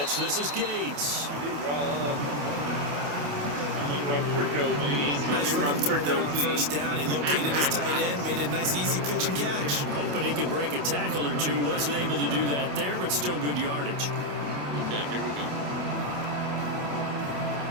This is Gates. Nice run through there on 1st down. He located his tight end, made a nice easy pitch and catch. Hoping he can break a tackle or two. Wasn't able to do that there, but still good yardage. Okay, here we go.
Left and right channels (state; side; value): late; left; 28 ms